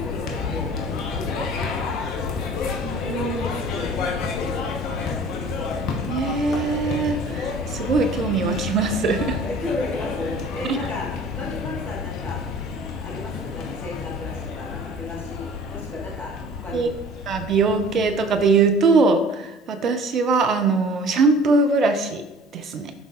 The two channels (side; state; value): both; normal; correlation 0.47